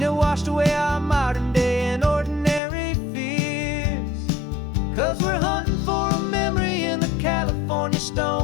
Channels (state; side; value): drops out; right; at 2.6 s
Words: it washed away our modern day and ordinary fears. 'Cause we're hunting for a memory in the California